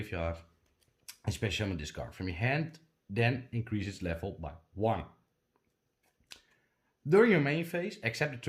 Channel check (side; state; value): both; identical; correlation 1.00